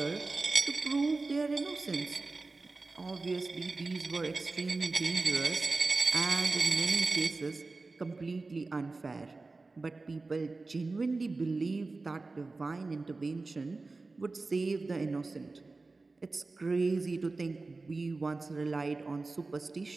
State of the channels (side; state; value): left; quieter; 3.6 dB